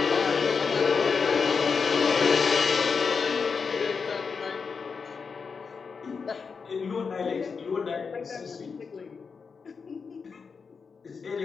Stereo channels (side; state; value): right; quieter; 5.4 dB